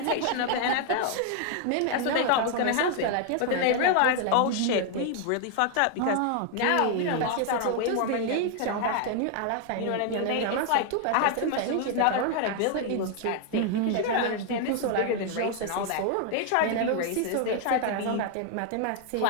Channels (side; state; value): both; different; correlation 0.00